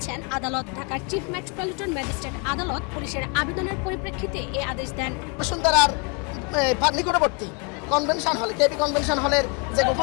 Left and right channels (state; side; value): quieter; right; 32.7 dB